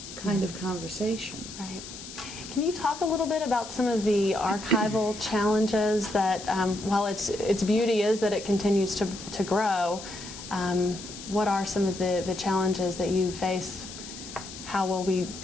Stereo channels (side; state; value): left; noise; hiss, 13 dB below the sound